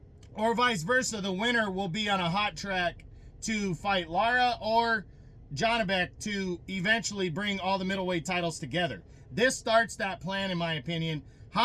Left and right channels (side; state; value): both; identical; correlation 1.00